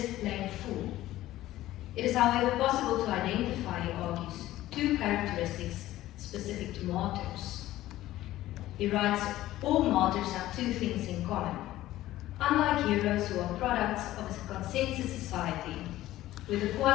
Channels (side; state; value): right; quieter; 15.2 dB